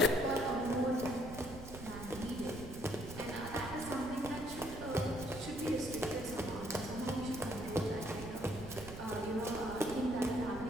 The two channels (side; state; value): right; noise; rumble, 12 dB below the sound